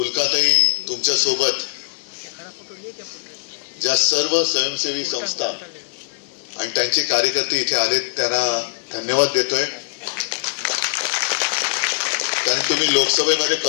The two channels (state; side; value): silent; right; digital silence